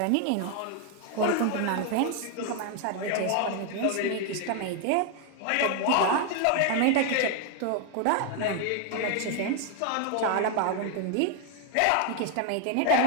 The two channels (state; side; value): different; both; correlation 0.01